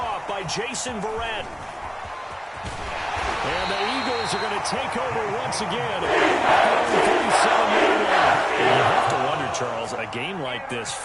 by Jason Verrett. And the Eagles are going to take over once again. You have to wonder, Charles, a game like this,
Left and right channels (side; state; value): both; identical; correlation 1.00